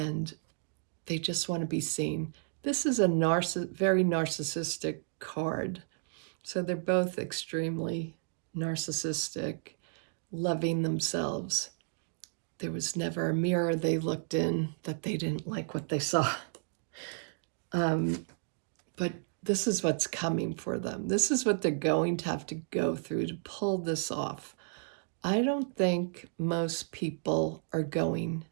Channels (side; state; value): left; silent; digital silence